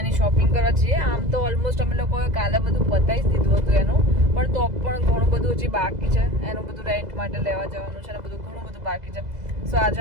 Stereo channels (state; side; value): late; left; 2.0 ms